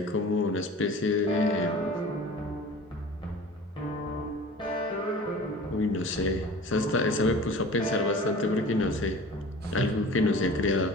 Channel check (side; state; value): both; normal; correlation 0.40